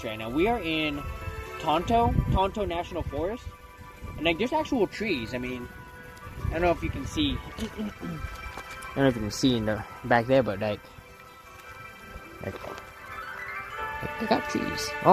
right now. We are in Tonto National Forest. And, like, there's actual trees. I mean, I don't know if you can see... I don't know if you can see in the back there, but like they got trees.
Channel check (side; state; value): both; identical; correlation 1.00